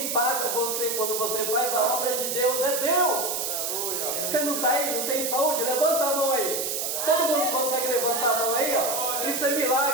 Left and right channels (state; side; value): noise; right; hiss, 1 dB below the sound